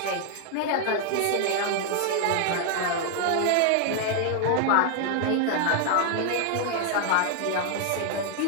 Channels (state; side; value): different; both; correlation 0.00